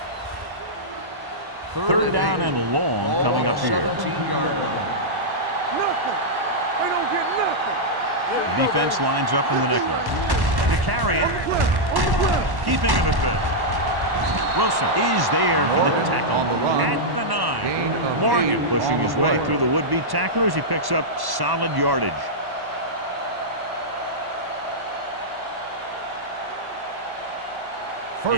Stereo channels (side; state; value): left; late; 1.1 ms